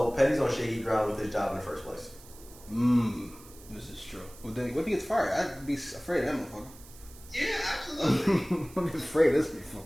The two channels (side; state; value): right; noise; hiss, 21 dB below the sound